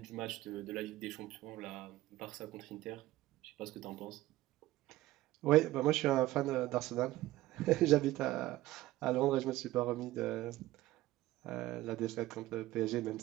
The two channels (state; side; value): quieter; left; 16.7 dB